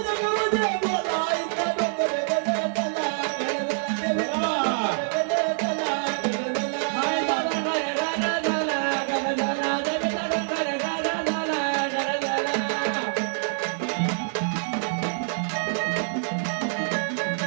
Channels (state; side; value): silent; left; digital silence